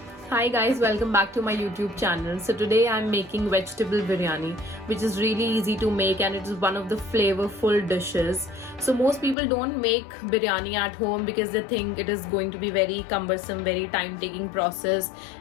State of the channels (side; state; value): right; drops out; at 9.3 s